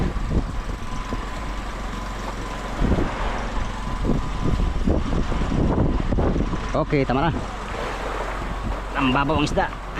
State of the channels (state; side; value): identical; both; correlation 1.00